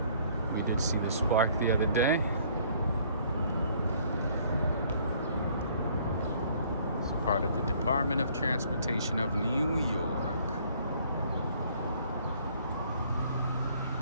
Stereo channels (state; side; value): inverted; both; correlation -0.60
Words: We did see the spark the other day. It's part of the Department of Transportation of New York.